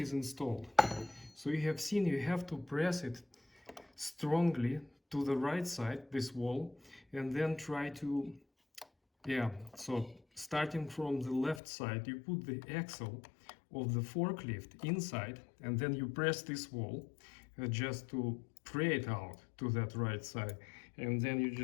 installed. So you have seen you have to press it strongly to the right side, this wall, and then try to, so starting from the left side, you put the axle of the forklift inside, and then you press this wall just to pray it out to that right side, and then you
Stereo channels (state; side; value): drops out; right; at 11.6 s